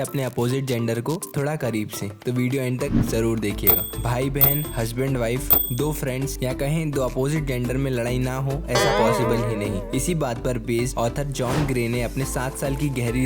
अपोजिट जेंडर को थोड़ा करीब से, तो वीडियो एंड तक जरूर देखिएगा। भाई बहन, हस्बैंड वाइफ, दो फ्रेंड्स या कहें दो अपोजिट जेंडर में लड़ाई ना हो, ऐसा पॉसिबल ही नहीं। इसी बात पर बेस्ड ऑथर जॉन ग्रे ने अपने 7 साल की गहरी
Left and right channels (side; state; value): both; identical; correlation 1.00